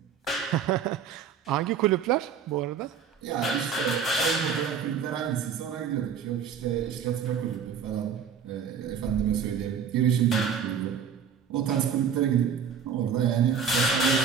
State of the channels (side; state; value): left; quieter; 7.0 dB